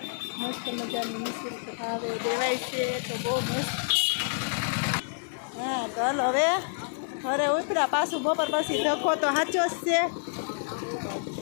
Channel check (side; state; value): right; silent; digital silence